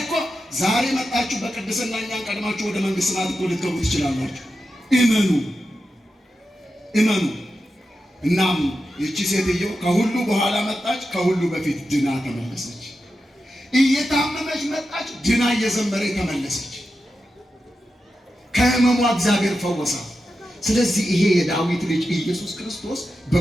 እኮ ዛሬ መጣችሁ በቅድስና እኛን ቀድማችሁ ወደ መንግሥተ ሰማያት እኮ ልትገቡ ትችላላችሁ። እመኑ። እናም ይቺ ሴትዮ ከሁሉ በኋላ መጣች፣ ከሁሉ በፊት ድና ተመለሰች። እየታመመች መጣች፣ ድና እየዘመረች ተመለሰች። ከህመሟ እግዚአብሔር ፈወሳት። ስለዚህ ይሄ የዳዊት ልጅ ኢየሱስ ክርስቶስ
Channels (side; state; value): both; normal; correlation 0.90